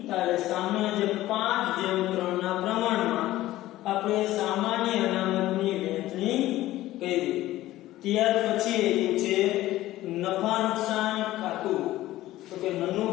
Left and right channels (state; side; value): quieter; right; 15.7 dB